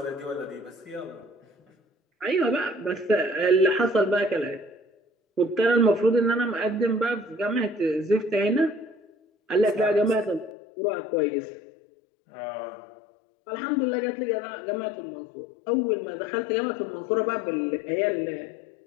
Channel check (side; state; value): right; drops out; at 10.5 s